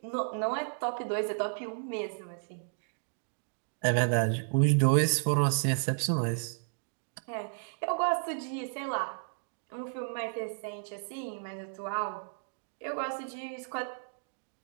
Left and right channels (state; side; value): silent; left; digital silence